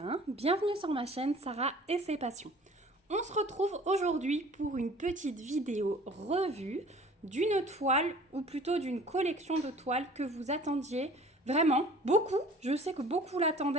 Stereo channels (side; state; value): both; normal; correlation 0.48